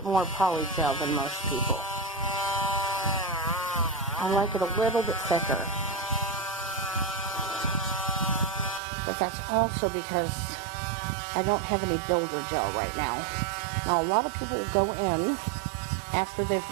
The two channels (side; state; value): left; drops out; at 8.8 s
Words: more polygel than most people. I like it a little bit thicker. But that's also because I don't have any builder gel right now. Now a lot of people will go in after they've